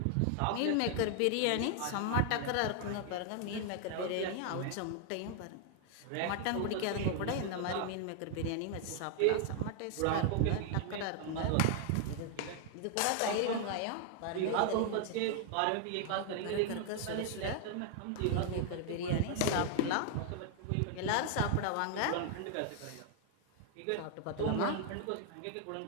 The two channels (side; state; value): both; different; correlation 0.00